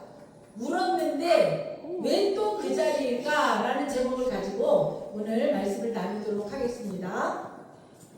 울었는데 왜 또 그 자리일까? 라는 제목을 가지고 오늘 말씀을 나누도록 하겠습니다.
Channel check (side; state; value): both; identical; correlation 1.00